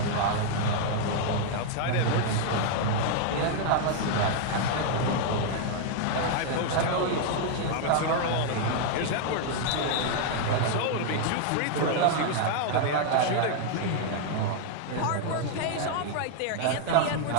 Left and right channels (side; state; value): both; different; correlation 0.00